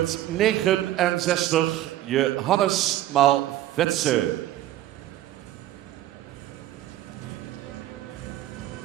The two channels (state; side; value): quieter; left; 13.8 dB